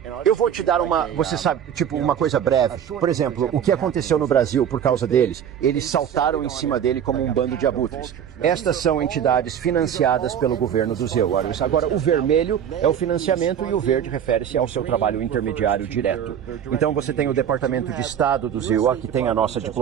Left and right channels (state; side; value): quieter; left; 9.0 dB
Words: Eu vou te dar você sabe, tipo uma coisa breve. Por exemplo, o que aconteceu no Brasil por causa deles? Eles saltaram em cima dele como um bando de abutres. Estas são entidades financiadas pelo governo do ZEWA. Agora, o vermelho é o financiamento e o verde refere-se ao seu trabalho intermediário direto. Então você tem o Departamento de Estado do ZEWA, que tem a nossa